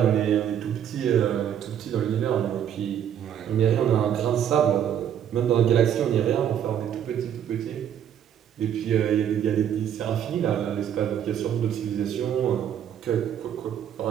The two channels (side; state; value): left; quieter; 9.5 dB